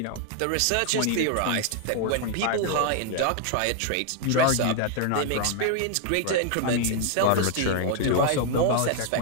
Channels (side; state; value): both; different; correlation 0.00